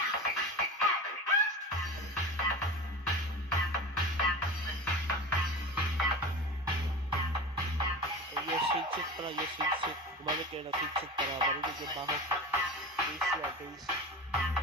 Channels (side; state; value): both; normal; correlation 0.30